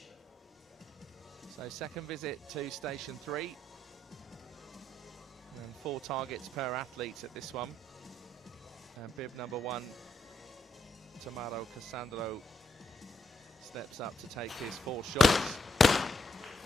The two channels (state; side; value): normal; both; correlation 0.76